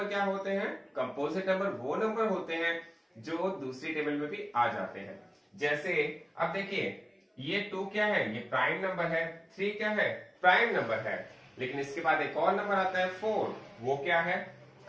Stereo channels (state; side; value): identical; both; correlation 1.00